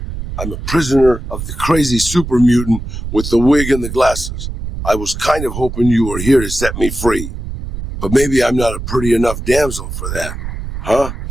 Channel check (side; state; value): right; noise; rumble, 7 dB below the sound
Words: I'm a prisoner of the crazy super mutant with the wig and the glasses. I was kind of hoping you were here to set me free. But maybe I'm not a pretty enough damsel for that. Huh?